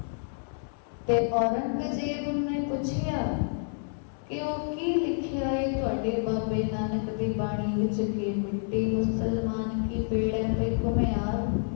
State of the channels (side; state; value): right; silent; 59 dB below the other